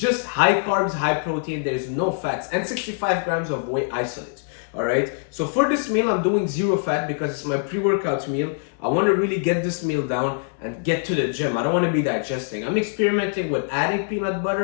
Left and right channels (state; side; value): silent; right; 63 dB below the other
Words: high carbs, high protein, there's no fats, and 65 grams of whey isolate, all right? So for this meal, I'm doing zero fat because it's my pre-workout meal. I want to really get this meal down and get to the gym. I don't want to be digesting. I'm experimenting with adding peanut